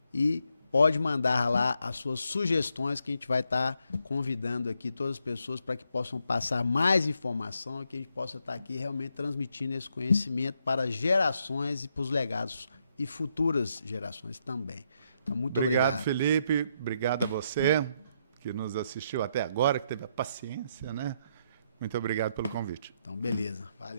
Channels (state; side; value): inverted; both; correlation -0.77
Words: e pode mandar lá as suas sugestões, que a gente vai estar convidando aqui todas as pessoas para que possam passar mais informação e que a gente possa estar aqui realmente transmitindo esse conhecimento para gerações e para os legados e futuras gerações também. Então, muito obrigado. Obrigado, Felipe. Obrigado a você que nos assistiu até agora, que teve a paciência, né? Muito obrigado pelo convite. Então, beleza.